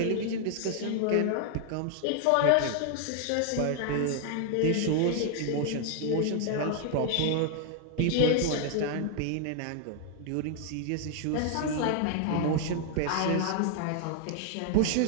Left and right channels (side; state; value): both; different; correlation 0.00